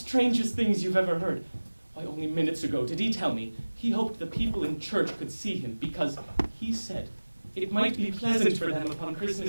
things you've ever heard. Why, only minutes ago did he tell me he hoped the people in church could see him because he said it might be pleasant for them upon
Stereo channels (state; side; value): inverted; both; correlation -1.00